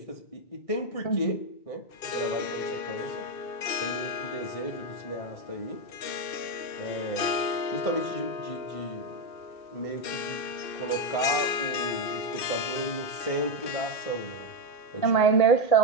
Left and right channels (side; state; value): right; late; 2.6 ms